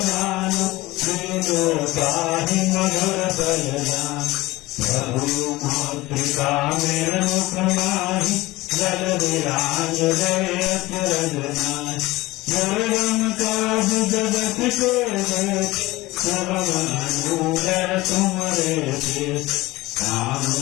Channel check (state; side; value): quieter; right; 19.5 dB